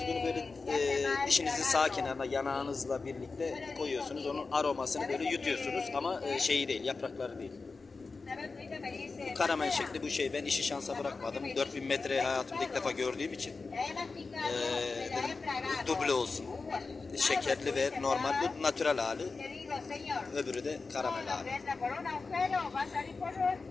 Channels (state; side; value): quieter; right; 4.2 dB